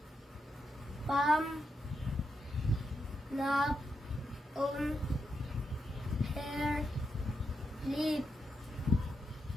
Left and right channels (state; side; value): normal; both; correlation 0.84